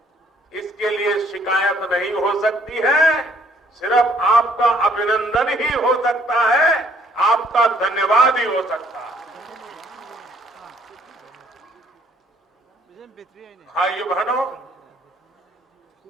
इसके लिए शिकायत नहीं हो सकती है, सिर्फ आपका अभिनंदन ही हो सकता है, आपका धन्यवाद ही हो सकता है। भाइयों बहनों,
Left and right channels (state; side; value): normal; both; correlation 0.64